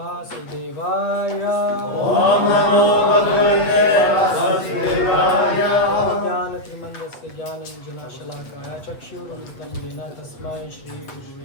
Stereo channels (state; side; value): late; right; 8.2 ms